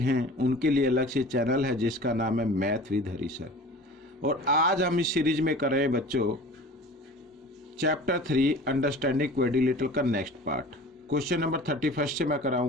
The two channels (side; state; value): both; normal; correlation 0.41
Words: उनके लिए अलग से चैनल है जिसका नाम है मैथ विद हरी सर। और आज हम इस सीरीज में कर रहे हैं बच्चों चैप्टर 3 अंडरस्टैंडिंग क्वाड्रिलेटरल का नेक्स्ट पार्ट। क्वेश्चन नंबर 31 से मैं